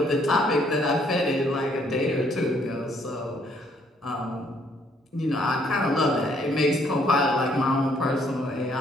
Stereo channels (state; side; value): normal; both; correlation 0.66